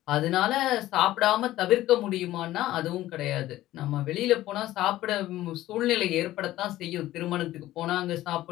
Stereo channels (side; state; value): right; quieter; 15.1 dB